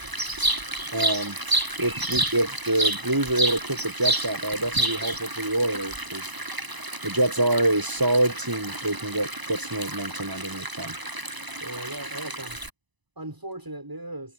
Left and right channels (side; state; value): left; late; 1.0 ms